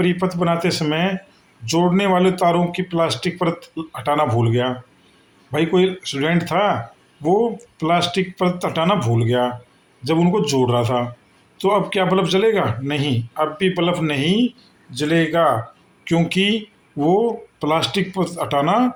बनाते समय जोड़ने वाले तारों की प्लास्टिक परत हटाना भूल गया। भाई कोई स्टूडेंट था, वो प्लास्टिक परत हटाना भूल गया जब उनको जोड़ रहा था, तो अब क्या बल्ब जलेगा? नहीं, अब भी बल्ब नहीं जलेगा, क्योंकि वो प्लास्टिक परत हटाना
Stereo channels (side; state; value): both; identical; correlation 1.00